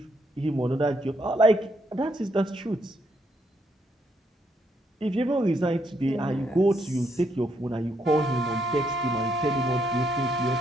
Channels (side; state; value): both; normal; correlation 0.75